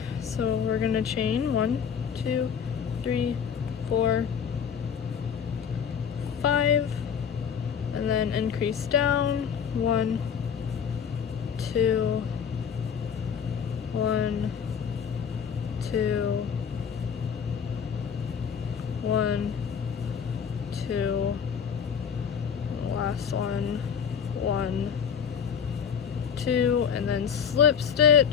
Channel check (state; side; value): quieter; right; 7.4 dB